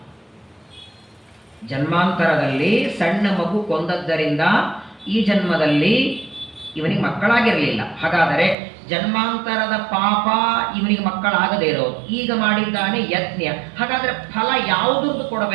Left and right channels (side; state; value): left; drops out; at 8.6 s